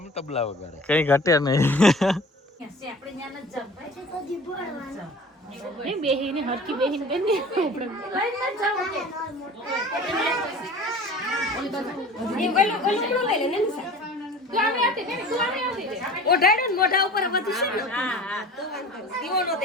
તબલા વગાડે. કઈ ઘટે નહીં. બેહીને હરકી બેહીને બેને મોઢા ઉપર બધું છે ને. હા દીવો નો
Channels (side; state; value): both; normal; correlation 0.42